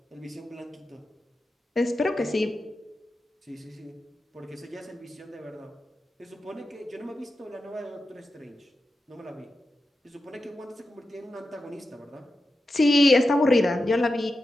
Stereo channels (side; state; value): both; normal; correlation 0.90